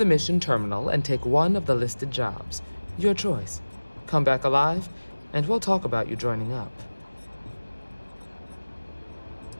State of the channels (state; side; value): inverted; both; correlation -1.00